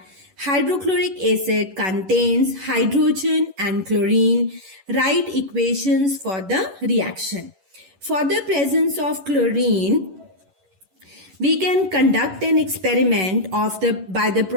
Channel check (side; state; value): left; late; 11 ms